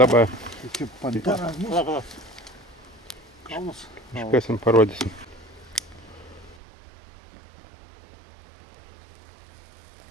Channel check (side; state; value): left; drops out; at 6.6 s